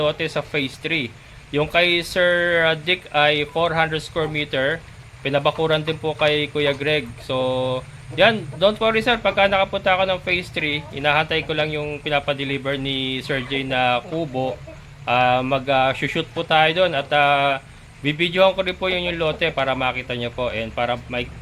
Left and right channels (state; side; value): identical; both; correlation 1.00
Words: sa phase 3. Yung kay Sir Dick ay 400 square meter. Pinabakuran din po kay Kuya Greg. So, yan, don't worry sir, pagka nakapunta ako ng phase 3, inahantay ko lang yung pinapadeliver ni Sir J na kubo. Mag-shoot po tayo doon at bibidyohan ko rin po yung lote para makita nyo po and para